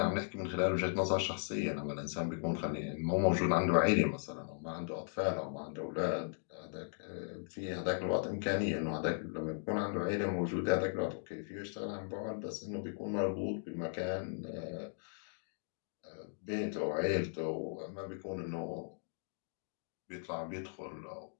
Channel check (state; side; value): silent; right; digital silence